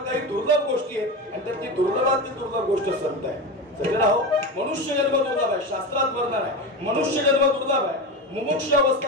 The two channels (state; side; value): normal; both; correlation 0.22